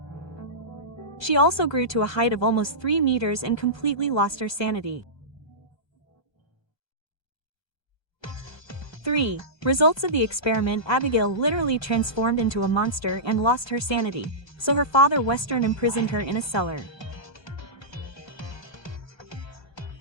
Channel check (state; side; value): late; right; 1.3 ms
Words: She also grew to a height of almost 3 meters and completely lost her sanity. 3. Results of the experiment. Abigail literally transformed into a monster and lost her sanity, so her father Western imprisoned her in a cellar.